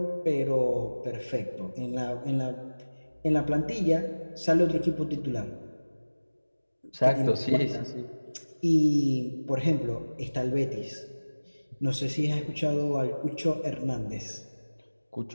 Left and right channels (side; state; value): both; inverted; correlation -1.00